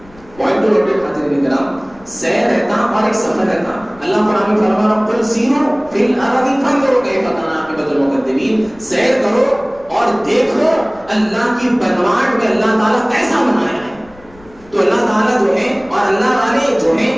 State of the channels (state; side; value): noise; left; rumble, 25 dB below the sound